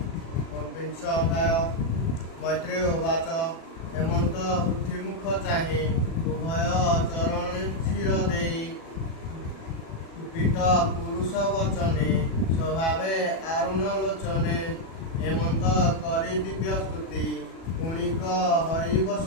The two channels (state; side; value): late; right; 37 ms